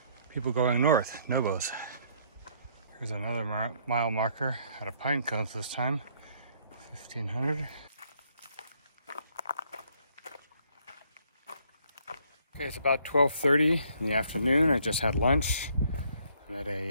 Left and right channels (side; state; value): both; inverted; correlation -0.66